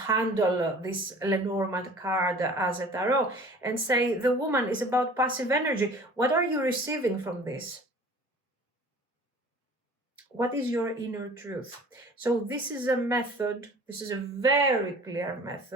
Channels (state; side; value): normal; both; correlation 0.46